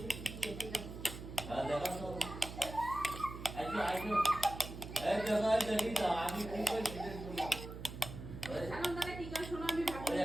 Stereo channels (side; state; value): right; noise; hum, 10 dB below the sound